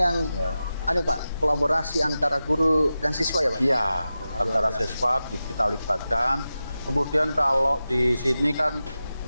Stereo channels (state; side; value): inverted; both; correlation -0.93